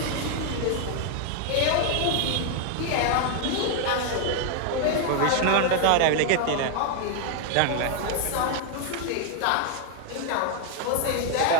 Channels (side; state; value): both; different; correlation 0.00